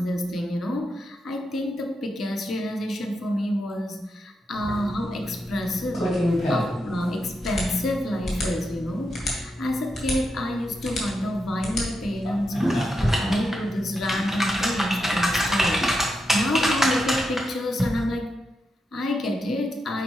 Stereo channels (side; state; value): both; normal; correlation 0.86